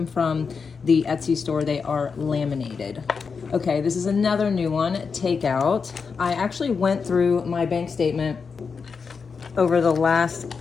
from the Etsy store, they are laminated. Okay, this is another new one, takeout. I actually went through my bank statement over the last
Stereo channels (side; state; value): right; quieter; 5.4 dB